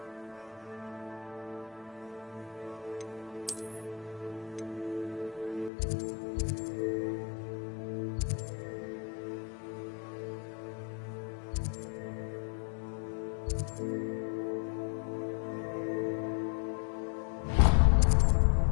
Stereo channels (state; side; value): drops out; right; at 5.7 s